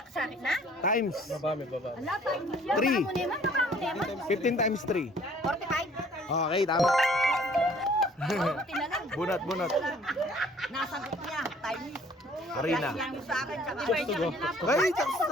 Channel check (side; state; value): both; normal; correlation 0.56